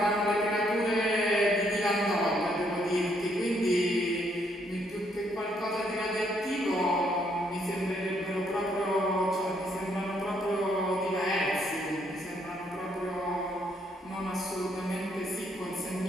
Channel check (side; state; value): both; normal; correlation 0.71